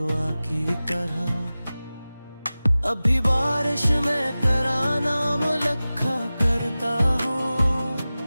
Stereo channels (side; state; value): both; inverted; correlation -0.97